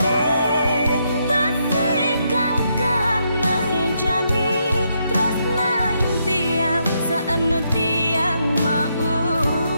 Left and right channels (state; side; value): inverted; both; correlation -0.78